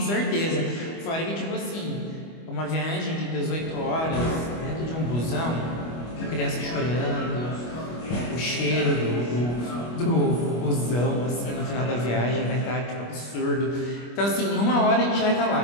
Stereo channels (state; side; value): late; right; 25 ms